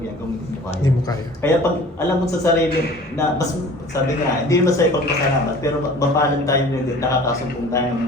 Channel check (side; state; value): both; normal; correlation 0.45